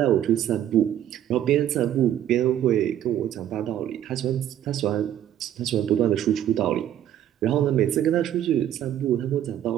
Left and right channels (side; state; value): left; quieter; 11.2 dB